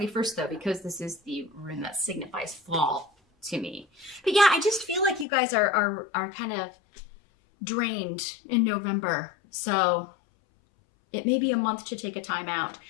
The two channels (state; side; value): drops out; right; at 5.2 s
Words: though, because this is the rune that signifies fall to me. But yeah, I just feel like you guys are kind of drained in November. So it may be a month to take a time out.